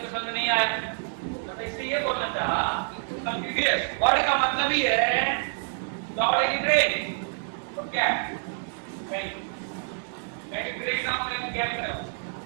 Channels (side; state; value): left; silent; digital silence